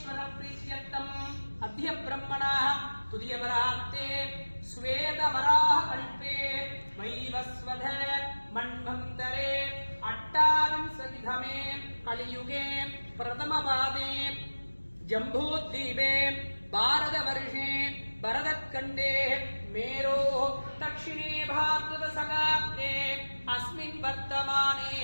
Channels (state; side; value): inverted; both; correlation -1.00